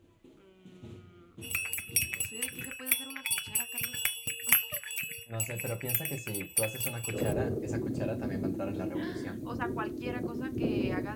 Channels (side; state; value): both; identical; correlation 1.00